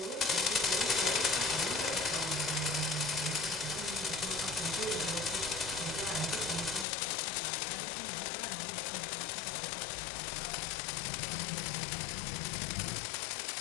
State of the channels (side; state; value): right; drops out; at 6.9 s